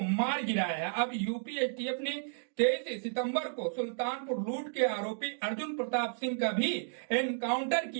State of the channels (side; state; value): left; silent; digital silence